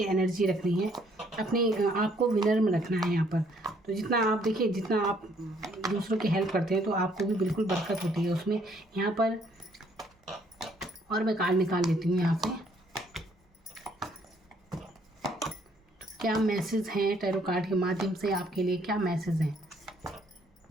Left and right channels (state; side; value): normal; both; correlation 0.65